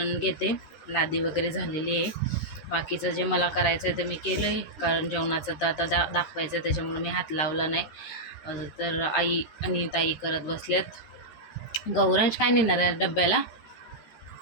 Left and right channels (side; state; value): right; late; 13 ms